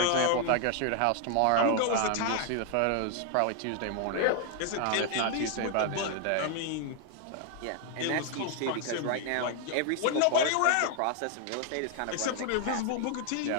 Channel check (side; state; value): both; different; correlation 0.00